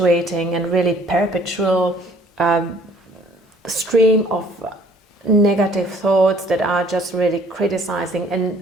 and really perpetual stream of negative thoughts that are just really criticizing,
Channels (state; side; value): normal; both; correlation 0.57